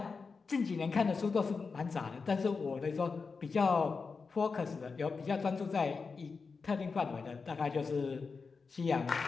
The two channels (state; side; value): quieter; right; 4.8 dB